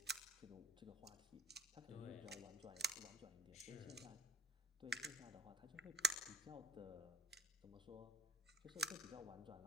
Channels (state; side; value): normal; both; correlation 0.52